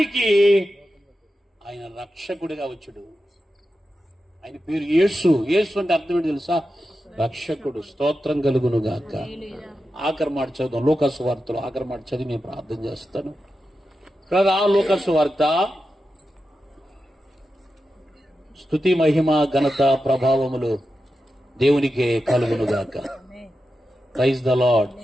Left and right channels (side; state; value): both; normal; correlation 0.90